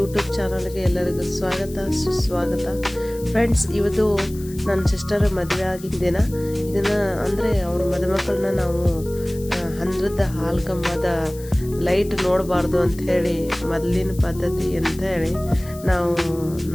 ಚಾನಲ್ಗೆ ಎಲ್ಲರಿಗೂ ಸ್ವಾಗತ ಸುಸ್ವಾಗತ. ಫ್ರೆಂಡ್ಸ್, ಇವತ್ತು ನನ್ನ ಸಿಸ್ಟರ್ ಮದುವೆ ಆಗಿದ್ದ ದಿನ. ಇದನ್ನು ಅಂದರೆ ಅವ್ರ ಮದುಮಕ್ಕಳನ್ನ ನಾವು ಹಂದ್ರದ ಹಾಲು ಕಂಬದ ಲೈಟ್ ನೋಡಬಾರ್ದು ಅಂಥೇಳಿ ಮೊದಲಿನ ಪದ್ಧತಿ ಅಂಥೇಳಿ ನಾವು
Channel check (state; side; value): noise; left; hiss, 19 dB below the sound